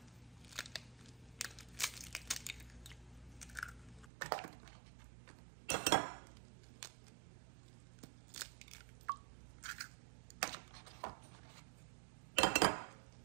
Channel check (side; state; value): left; drops out; at 4.0 s